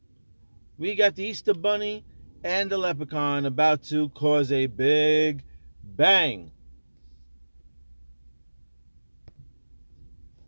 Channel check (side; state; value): both; inverted; correlation -1.00